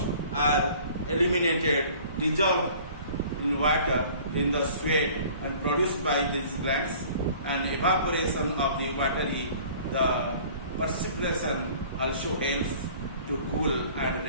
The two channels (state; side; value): inverted; both; correlation -0.49